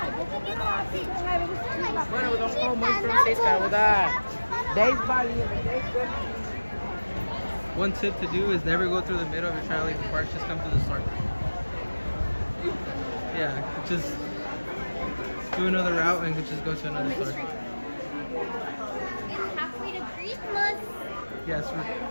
Bueno, vamos muy francesa, ¿verdad? 10 balinhas, 10 balinhas. One tip to do is never go through the middle if you're trying to leave the park. Just come to the store. Yeah, just do another route and just go to another store. It's halfway to Christmas. Yes,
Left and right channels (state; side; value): inverted; both; correlation -1.00